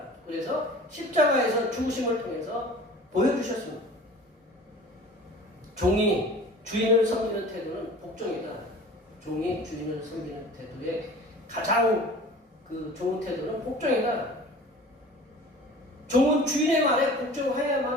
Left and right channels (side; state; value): both; normal; correlation 0.42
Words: 그래서 십자가에서 죽으심을 통해서 보여주셨습니다. 종이 주인을 섬기는 태도는 복종이다. 종이 주인을 섬기는 태도의 가장 좋은 태도는 복종이다. 종은 주인의 말에